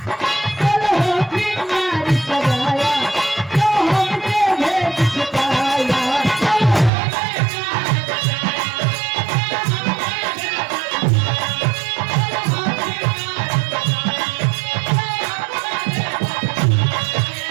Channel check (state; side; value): drops out; left; at 6.9 s